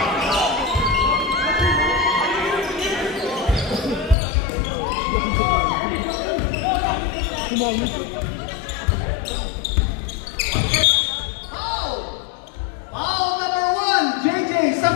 Foul number 1, JJ,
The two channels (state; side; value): drops out; right; at 4.2 s